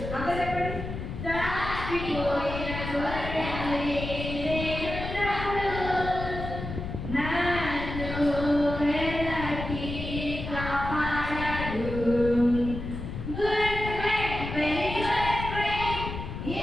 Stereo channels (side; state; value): left; noise; rumble, 7 dB below the sound